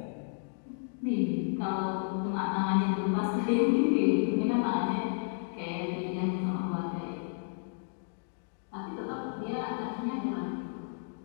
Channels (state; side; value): silent; right; digital silence